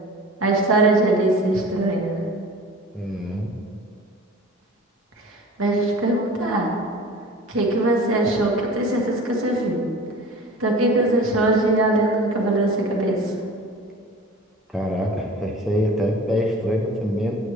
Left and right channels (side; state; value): both; normal; correlation 0.40